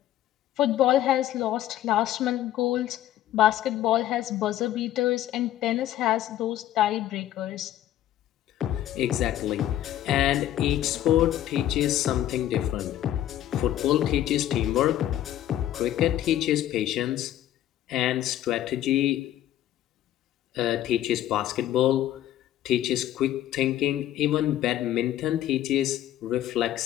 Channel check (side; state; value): right; quieter; 12.5 dB